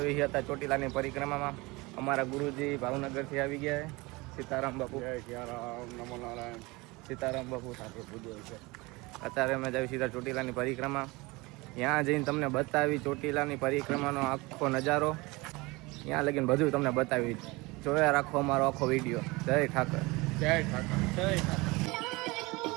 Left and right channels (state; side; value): quieter; left; 23.7 dB